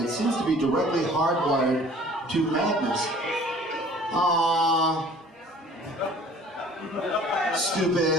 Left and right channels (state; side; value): normal; both; correlation 0.50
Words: seems to be directly hardwired to madness. Aww.